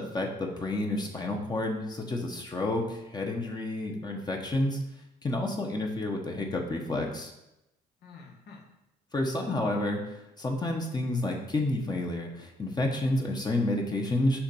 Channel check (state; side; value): normal; both; correlation 0.73